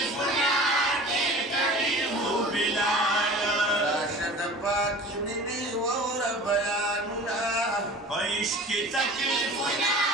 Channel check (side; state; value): both; normal; correlation 0.40